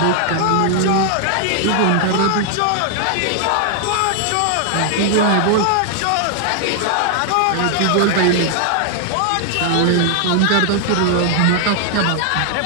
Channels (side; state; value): both; different; correlation 0.00